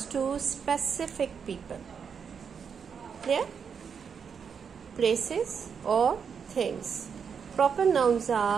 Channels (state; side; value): quieter; left; 6.6 dB